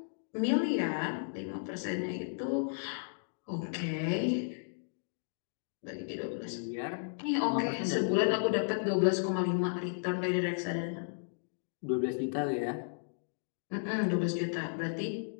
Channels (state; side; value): silent; right; digital silence